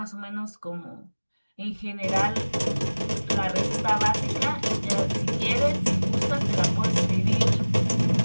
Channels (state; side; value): inverted; both; correlation -1.00